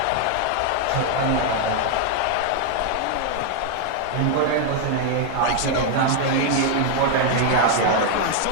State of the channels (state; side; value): different; both; correlation 0.00